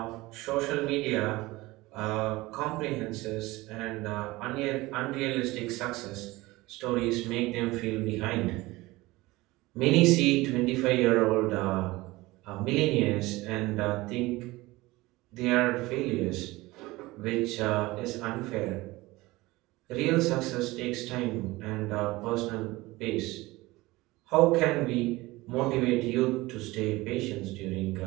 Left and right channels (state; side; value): quieter; left; 20.3 dB